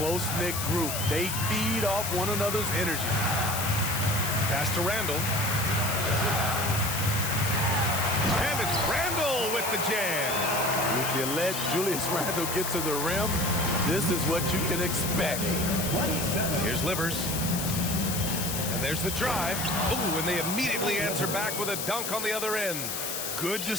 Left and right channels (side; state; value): left; noise; hiss, 3 dB below the sound